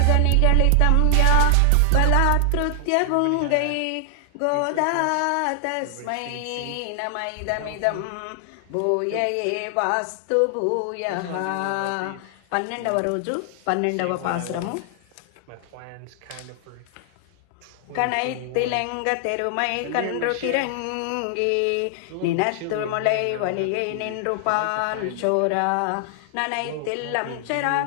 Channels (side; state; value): both; different; correlation 0.00